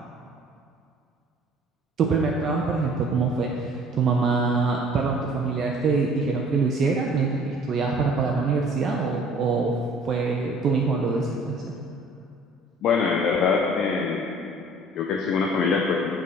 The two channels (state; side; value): normal; both; correlation 0.51